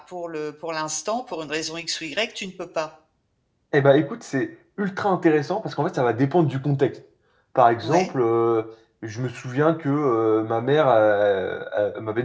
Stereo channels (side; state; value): both; identical; correlation 1.00